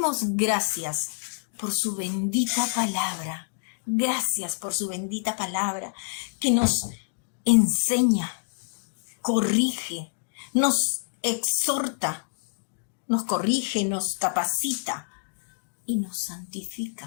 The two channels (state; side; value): silent; right; digital silence